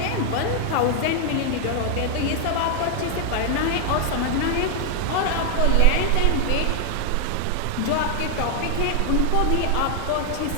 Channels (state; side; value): different; both; correlation 0.00